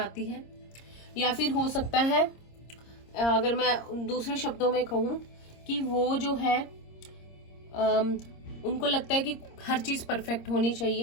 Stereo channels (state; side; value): late; right; 26 ms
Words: है, या फिर हो सकता है, अगर मैं दूसरे शब्दों में कहूँ, कि वो जो है उनको लगता है कि हर चीज परफेक्ट होनी